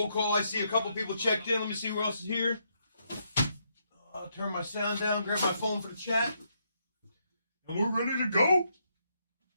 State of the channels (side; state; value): both; inverted; correlation -0.77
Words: call. I see a couple people checked in. Let me see who else is here. I'll turn my sound down, grab my phone for the chat. And we're ready to go. You